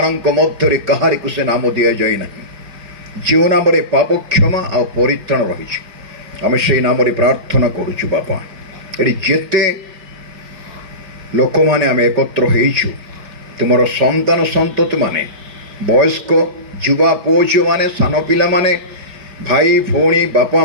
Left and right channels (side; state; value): left; late; 5.2 ms